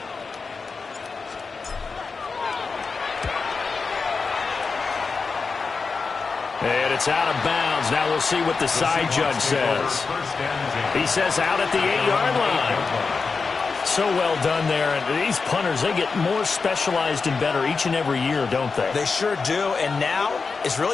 And And it's out of bounds. Now we'll see what the side judge says. He says out at the 8-yard line. So well done there. And these punters, they get more specialized and better each and every year, don't they? They sure do. And now it's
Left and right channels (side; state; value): right; quieter; 4.7 dB